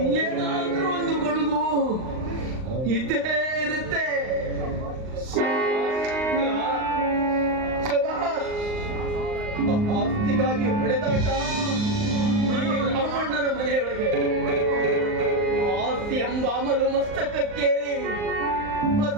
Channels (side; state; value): left; late; 39 ms